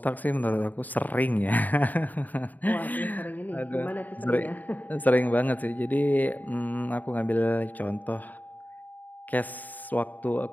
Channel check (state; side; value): late; right; 0.083 ms